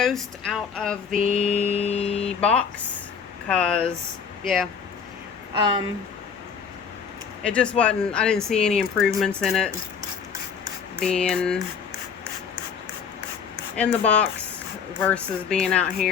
out of the box because, yeah, it just wasn't, I didn't see any improvements in it being in the box versus being out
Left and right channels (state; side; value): quieter; right; 6.6 dB